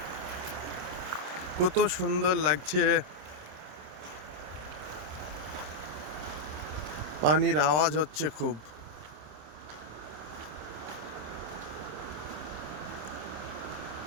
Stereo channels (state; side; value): late; left; 27 ms